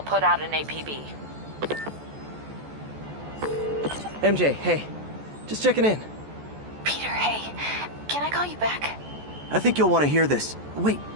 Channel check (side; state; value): left; late; 14 ms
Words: put out an APB. MJ, hey. Just checking in. Peter, hey. Can I call you back? I think you'll want to hear this. Wait,